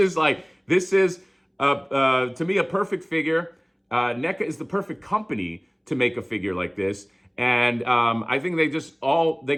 Like, this is, to me, a perfect figure. NECA is the perfect company to make a figure like this. And I think they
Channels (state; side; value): identical; both; correlation 1.00